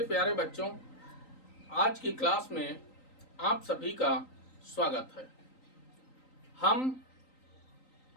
प्यारे बच्चों, आज की क्लास में आप सभी का स्वागत है। हम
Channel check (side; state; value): right; late; 3.9 ms